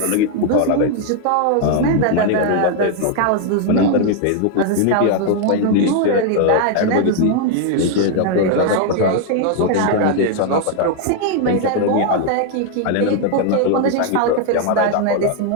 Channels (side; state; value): both; different; correlation 0.00